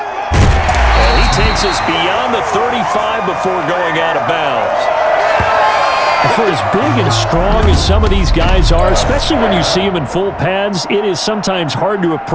And he takes us beyond the 35 before going out of bounds. For as big and strong as some of these guys are, especially when you see them in full pads, it is sometimes hard to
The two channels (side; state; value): both; identical; correlation 1.00